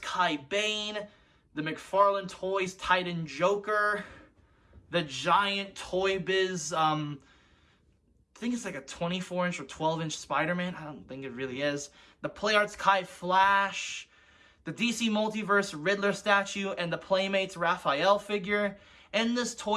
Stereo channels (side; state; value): both; identical; correlation 1.00